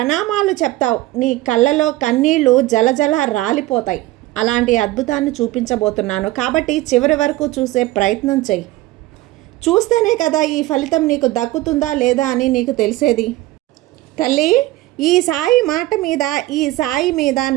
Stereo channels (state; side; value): quieter; left; 17.5 dB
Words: చెప్తావు. నీ కళ్ళలో కన్నీళ్లు జలజల రాలిపోతాయి. అలాంటి అద్భుతాన్ని చూపించబోతున్నాను. కాబట్టి చివరి వరకు చూసే ప్రయత్నం చెయ్యి. చూస్తేనే కదా ఈ ఫలితం నీకు దక్కుతుందా లేదా అని నీకు తెలిసేది. తల్లి, ఈ సాయి మాట మీద, ఈ సాయి మీద